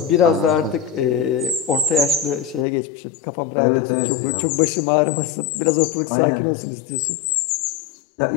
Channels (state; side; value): drops out; right; at 2.7 s